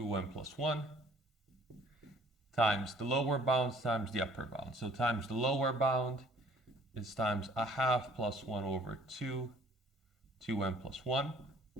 plus 1, times the lower bound times the upper bound. So times the lower bound is times a half plus 1 over 2, 2m plus 1.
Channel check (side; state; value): both; normal; correlation 0.56